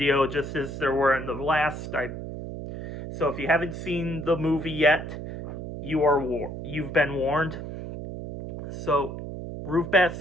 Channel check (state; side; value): noise; right; hum, 8 dB below the sound